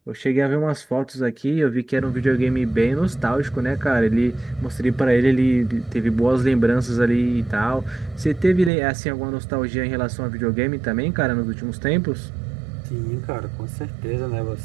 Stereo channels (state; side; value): drops out; left; at 8.7 s